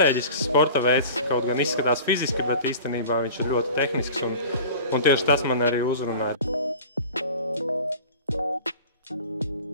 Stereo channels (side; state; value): both; inverted; correlation -0.40